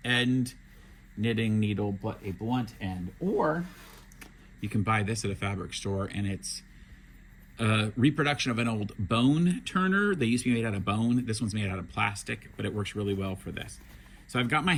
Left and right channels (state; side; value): identical; both; correlation 1.00